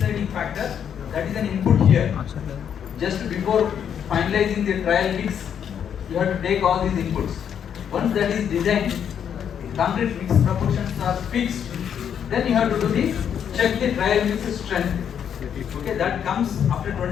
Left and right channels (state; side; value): quieter; right; 8.4 dB